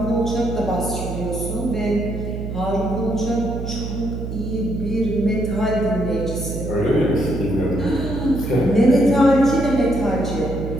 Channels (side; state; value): right; noise; hum, 6 dB below the sound